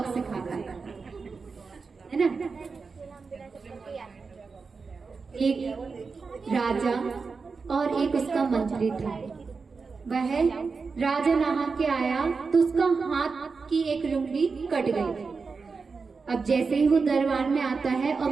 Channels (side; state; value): left; quieter; 4.7 dB